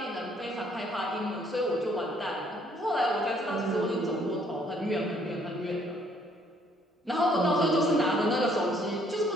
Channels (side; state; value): both; normal; correlation 0.65